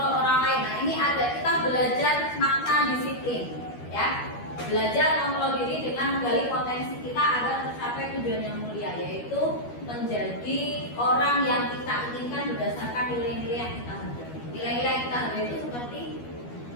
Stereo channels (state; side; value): late; right; 12 ms